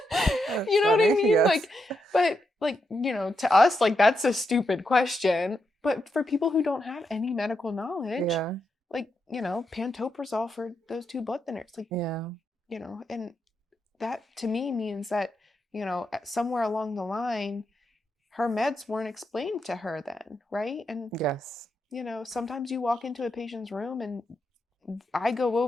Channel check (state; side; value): normal; both; correlation 0.83